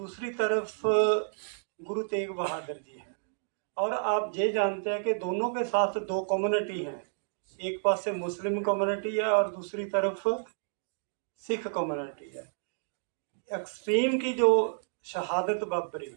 तरफ गुरु तेग बहादुर जी हैं। और आप ये जानते हैं कि दोनों के साथ दो कम्युनिटी हैं, एक पास से मुस्लिम कम्युनिटी है और दूसरी तरफ सिख कम्युनिटी है। एक्सट्रीम की जो शहादत वापरी,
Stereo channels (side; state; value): left; silent; digital silence